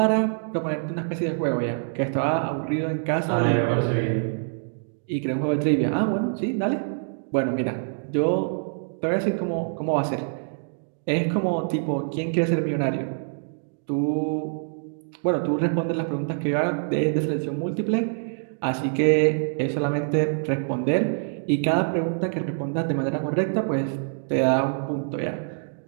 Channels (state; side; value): silent; left; digital silence